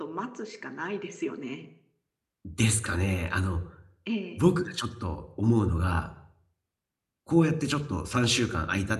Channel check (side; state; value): both; identical; correlation 1.00